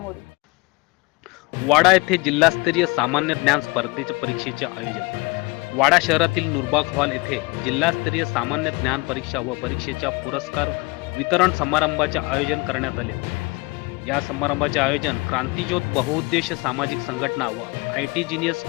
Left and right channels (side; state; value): right; quieter; 25.8 dB